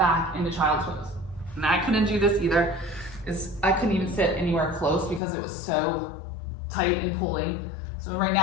into child's pose. And I couldn't do this either. I couldn't even sit anywhere close because it was so tight and pulling. So right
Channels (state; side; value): drops out; right; at 5.2 s